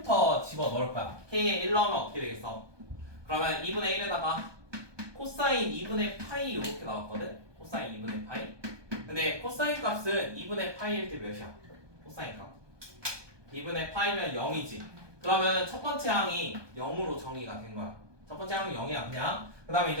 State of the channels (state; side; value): late; left; 1.2 ms